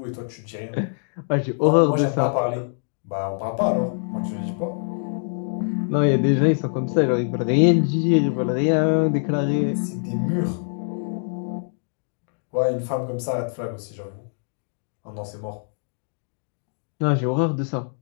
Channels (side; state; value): right; silent; digital silence